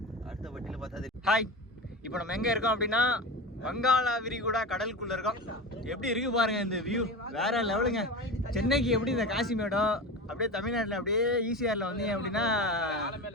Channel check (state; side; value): normal; both; correlation 0.27